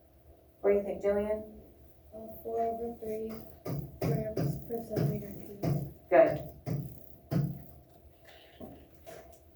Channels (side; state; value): both; identical; correlation 1.00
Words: What do you think, Jillian? 4 over 3 grams per centimeter cubed. Good.